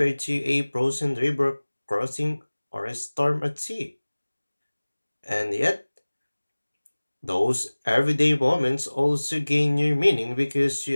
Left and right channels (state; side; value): inverted; both; correlation -1.00